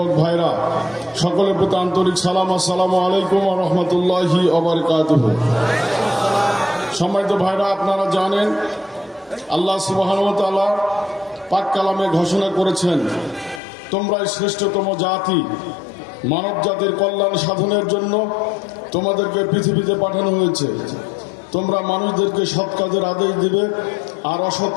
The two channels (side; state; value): right; drops out; at 13.6 s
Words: ভাইরা, সকলের প্রতি আন্তরিক সালাম। আসসালামু আলাইকুম ওয়া রাহমাতুল্লাহি ওয়া বারাকাতুহু। সম্মানিত ভাইরা, আপনারা জানেন আল্লাহ সুবহানাহু ওয়া তাআলা পাক কালামে ঘোষণা করেছেন, তোমরাই শ্রেষ্ঠতম জাতি, মানব জাতির কল্যাণ সাধনের জন্য তোমাদেরকে পৃথিবীতে পাঠানো হয়েছে। তোমরা মানুষদেরকে সৎ কাজের আদেশ দিবে আর অসৎ